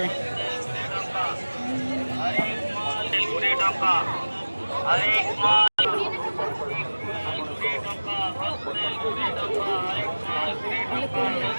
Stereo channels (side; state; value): both; inverted; correlation -1.00